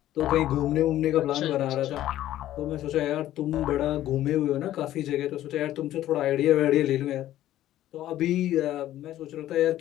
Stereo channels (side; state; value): right; quieter; 13.4 dB